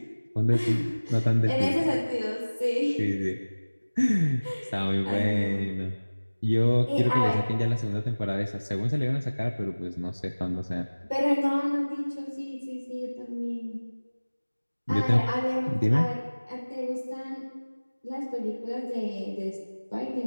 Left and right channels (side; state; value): both; inverted; correlation -1.00